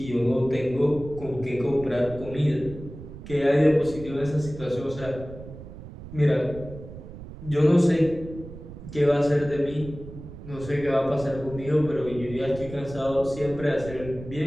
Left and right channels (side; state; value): right; noise; rumble, 13 dB below the sound